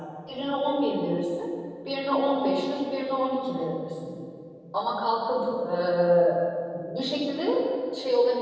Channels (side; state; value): both; identical; correlation 1.00